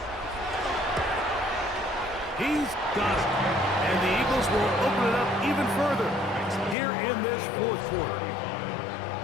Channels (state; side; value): drops out; right; at 6.8 s